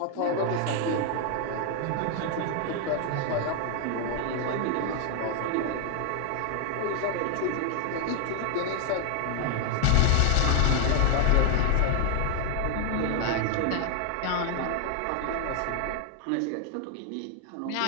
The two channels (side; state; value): both; different; correlation 0.00